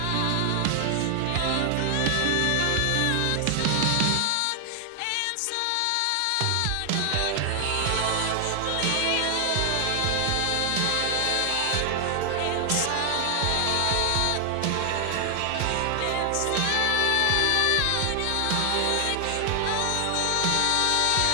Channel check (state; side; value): different; both; correlation 0.00